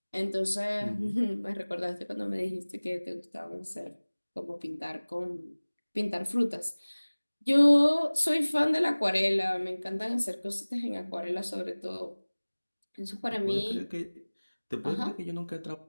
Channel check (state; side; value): inverted; both; correlation -1.00